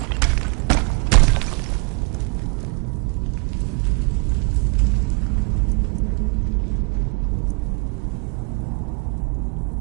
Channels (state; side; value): quieter; left; 32.8 dB